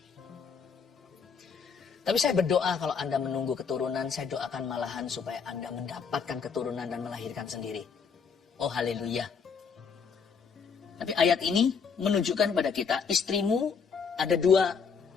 Tapi saya berdoa kalau Anda menunggu keturunan, saya doakan malahan supaya Anda mendapatkan keturunan dan melahirkan sendiri. Oh haleluya. Tapi ayat ini menunjukkan kepada kita, istrimu ada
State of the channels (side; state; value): right; quieter; 6.0 dB